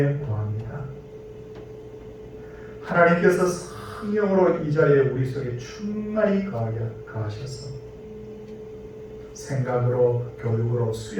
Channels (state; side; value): identical; both; correlation 1.00